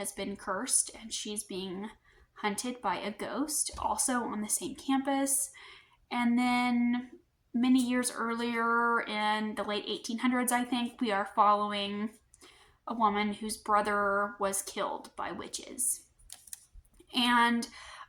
been cursed and she's being hunted by a ghost, also on the same campus. And then many years earlier, in the late 1800s, I think, we are following a woman whose brother was killed by witches. And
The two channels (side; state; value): both; identical; correlation 1.00